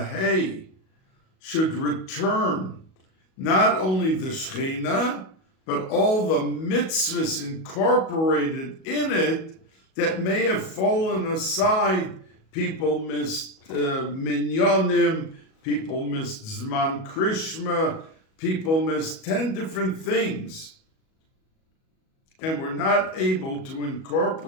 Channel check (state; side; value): late; right; 37 ms